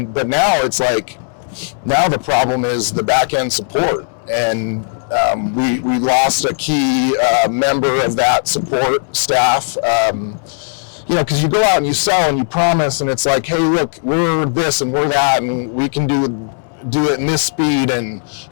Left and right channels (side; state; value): right; silent; 68 dB below the other